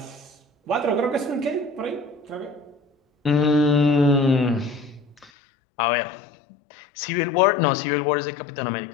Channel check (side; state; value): right; drops out; at 5.3 s